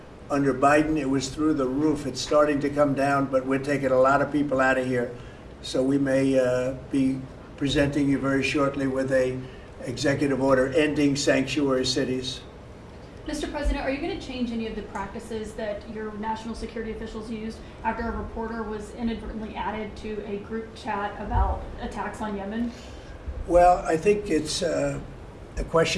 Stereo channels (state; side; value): identical; both; correlation 1.00